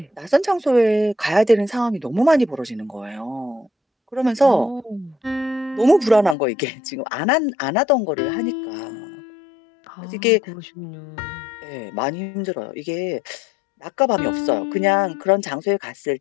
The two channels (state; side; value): drops out; right; at 6.4 s